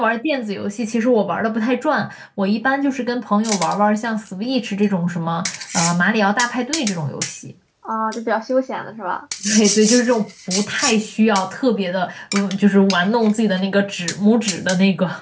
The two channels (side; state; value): both; identical; correlation 1.00